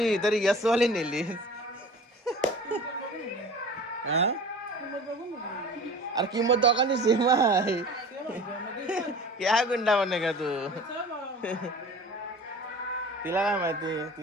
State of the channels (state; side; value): normal; both; correlation 0.41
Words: तरी यस वाली नेली अरे किंमत दोघांनी सेम आहे क्या गुंडा बने का तू तिला काय माहिती